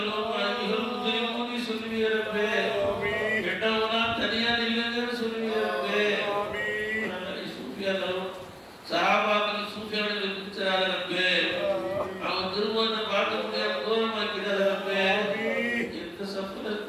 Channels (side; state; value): both; identical; correlation 1.00